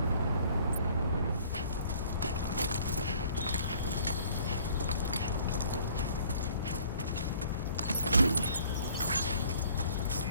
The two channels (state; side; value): inverted; both; correlation -0.56